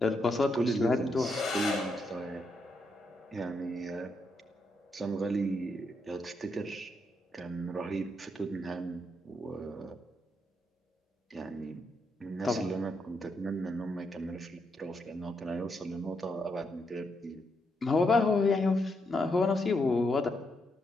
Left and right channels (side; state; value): both; normal; correlation 0.80